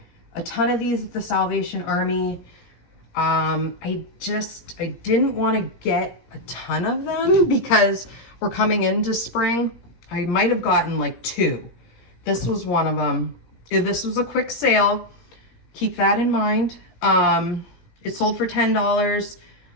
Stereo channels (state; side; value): late; right; 17 ms